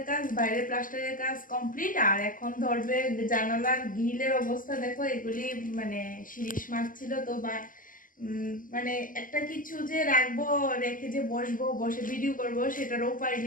কাজ, বাইরের প্লাস্টারের কাজ কমপ্লিট। আর এখন ধরবে জানালার গ্রিলের অবস্থা দেখো, এগুলি মানে শিরিষ মাছ ছিল তো, বা মানে একটা কিছু যে রাখবো, রেখে যে বসবো, বসে ভিডিও করব সেটারও উপায়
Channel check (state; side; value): late; right; 0.39 ms